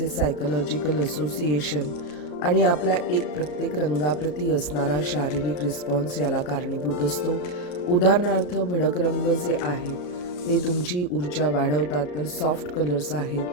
सायकोलॉजिकल असोसिएशन आणि आपला प्रत्येक रंगाप्रती असणारा शारीरिक रिस्पॉन्स याला कारणीभूत असतो. उदाहरणार्थ भडक रंग जे आहेत ते तुमची ऊर्जा वाढवतात, तर सॉफ्ट कलर्स आहेत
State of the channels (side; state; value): right; late; 34 ms